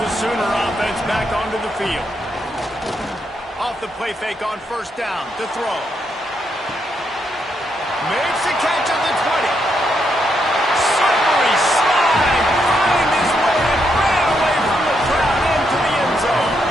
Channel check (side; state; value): both; normal; correlation 0.79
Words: the Sooner offense back onto the field. Off the play fake on first down to throw. Makes the catch at the 20. Slippery slide. Find his way and ran away from the crowd into the end zone.